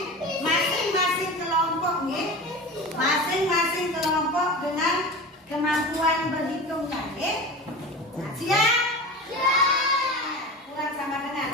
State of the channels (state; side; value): normal; both; correlation 0.30